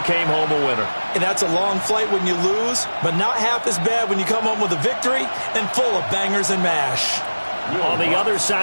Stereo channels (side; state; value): both; inverted; correlation -1.00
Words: came home a winner. And that's a long flight when you lose, but not half as bad when you come home with a victory and full of bangers and mash. On the other